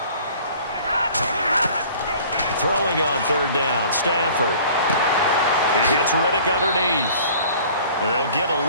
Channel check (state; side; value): inverted; both; correlation -0.49